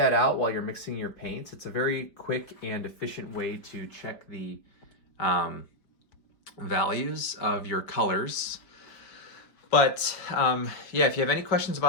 out while you're mixing your paints. It's a very quick and efficient way to check the values of your colors. But yeah, if you have any questions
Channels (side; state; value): right; late; 4.9 ms